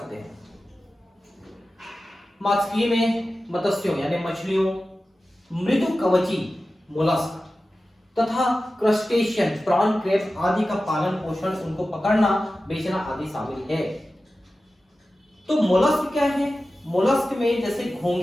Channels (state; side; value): normal; both; correlation 0.94